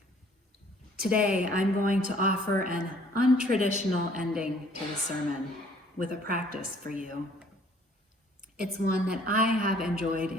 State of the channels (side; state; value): both; normal; correlation 0.58